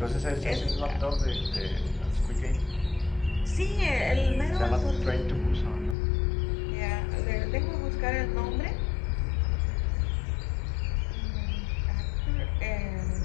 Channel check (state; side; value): drops out; right; at 6.0 s